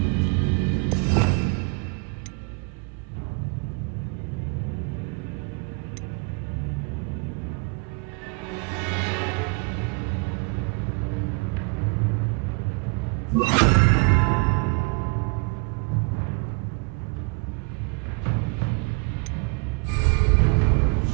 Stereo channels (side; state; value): left; quieter; 32.5 dB